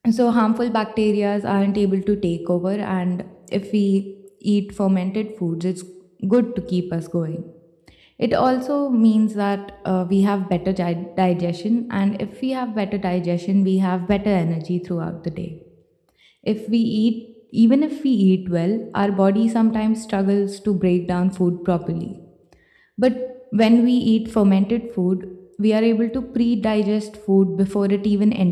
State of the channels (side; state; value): both; identical; correlation 1.00